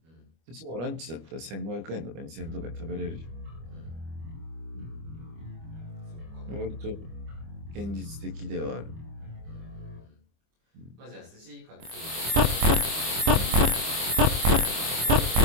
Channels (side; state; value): left; late; 25 ms